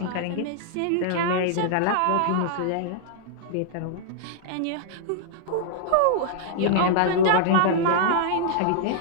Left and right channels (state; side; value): different; both; correlation -0.01